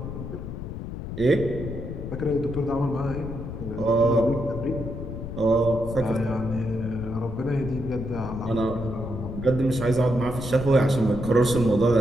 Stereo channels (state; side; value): noise; left; rumble, 7 dB below the sound